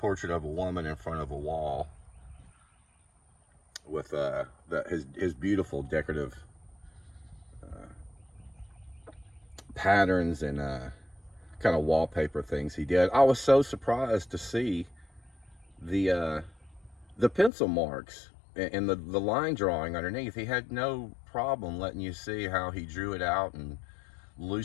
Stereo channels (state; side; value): drops out; right; at 17.5 s